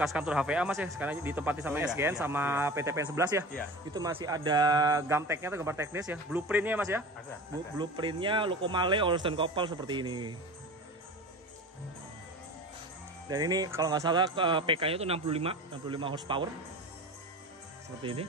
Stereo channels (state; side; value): normal; both; correlation 0.34